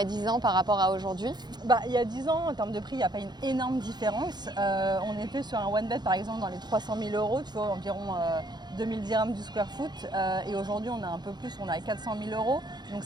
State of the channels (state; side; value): late; left; 0.21 ms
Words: 10 ans par rapport à aujourd'hui? Il y a 10 ans, en termes de prix, il n'y a pas une énorme différence. On était sur un one bed, par exemple, dans les 300 000 €, tu vois, environ 2000 dirhams du square foot. Et aujourd'hui, on a un peu plus, on a 400 000 €. Donc